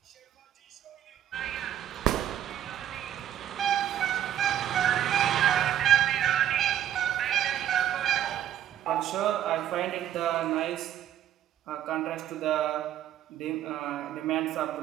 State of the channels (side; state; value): left; quieter; 11.1 dB